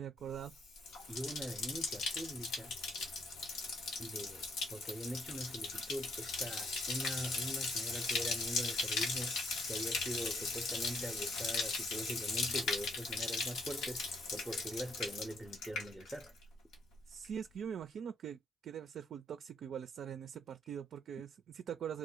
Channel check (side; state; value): both; normal; correlation 0.69